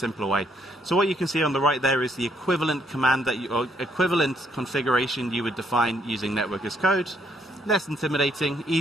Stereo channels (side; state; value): both; normal; correlation 0.71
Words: way. So what you can see on the right there is the equivalent command or equivalent configuration you would define using network as code. Less intimidating,